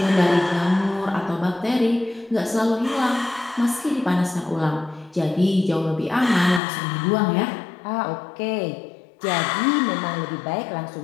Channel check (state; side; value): drops out; right; at 6.6 s